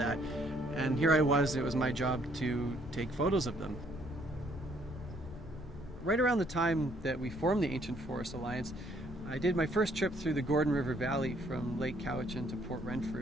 And here I was, it was my job to take photos of them. Right around the time that we formed the Ancient Forest Alliance, I did my first trip through the Gordon River Valley from Lake Cowichan to Port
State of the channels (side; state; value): left; noise; rumble, 14 dB below the sound